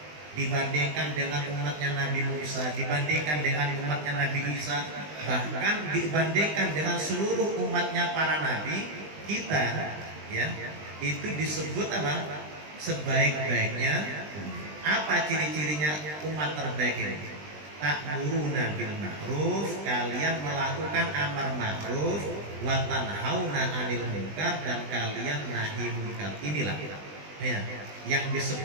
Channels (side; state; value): left; late; 20 ms